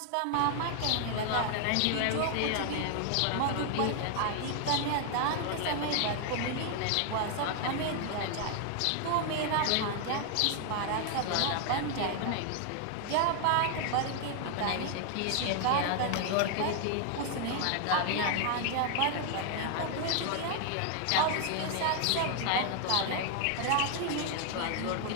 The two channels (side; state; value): both; different; correlation 0.00